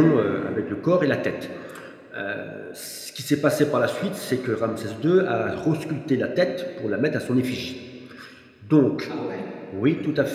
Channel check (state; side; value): identical; both; correlation 1.00